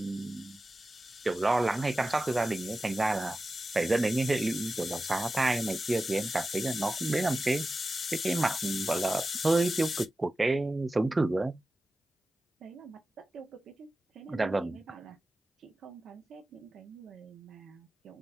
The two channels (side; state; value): both; normal; correlation 0.94